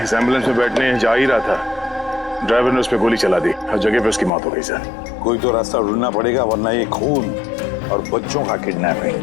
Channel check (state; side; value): drops out; right; at 4.3 s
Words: इस एम्बुलेंस में बैठने जा ही रहा था, ड्राइवर ने उस पर गोली चला दी और जगह पे उसकी मौत हो गई सर। कोई तो रास्ता ढूंढना पड़ेगा, वरना ये खून और बच्चों का